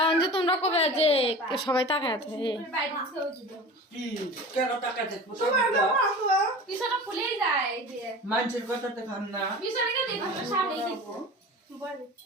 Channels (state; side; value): normal; both; correlation 0.36